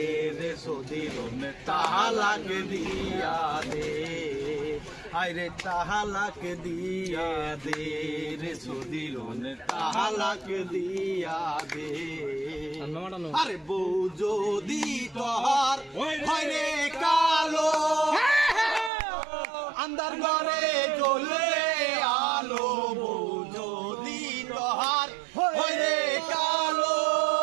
রে সদিরন, তালাক দিয়া দে, আরে তালাক দিয়া দে রে সদিরন, তালাক দিয়া দে। আরে বউ যদি তোর হয় রে কালো, আন্দার ঘরে জ্বলে আলো, বউ যদি তোর হয় রে কালো,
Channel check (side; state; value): left; drops out; at 18.9 s